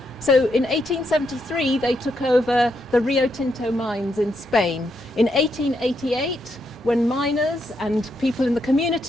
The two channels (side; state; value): both; normal; correlation 0.79